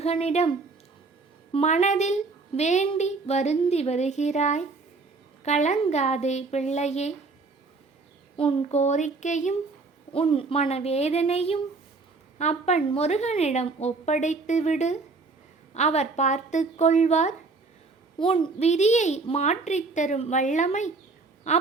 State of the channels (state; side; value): quieter; left; 3.9 dB